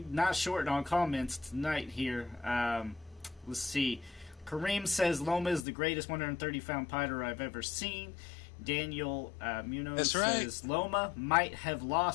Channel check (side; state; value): right; drops out; at 5.7 s